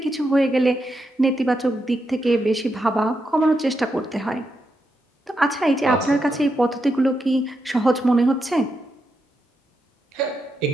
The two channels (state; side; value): normal; both; correlation 0.84